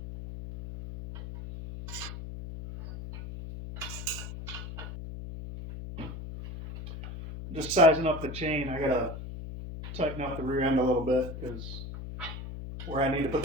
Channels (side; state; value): left; noise; hum, 9 dB below the sound